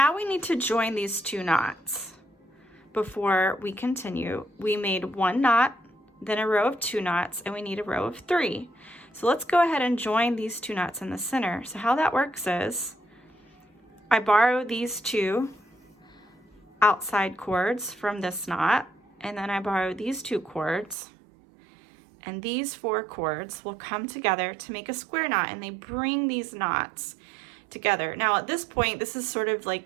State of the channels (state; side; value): drops out; left; at 21.0 s